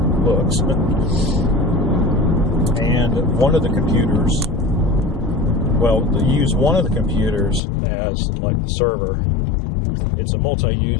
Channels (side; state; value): right; drops out; at 7.6 s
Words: And one of the computers, well, they use one of the computers as like the server. It's a